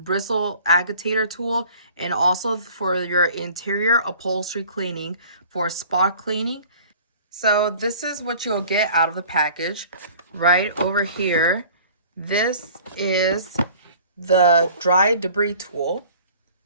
agitator tool, and also for your interior upholstery cleaning for spot cleaning. So this is what you'll get out of the package. Right over here, this is the dry debris tool,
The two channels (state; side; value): inverted; both; correlation -0.49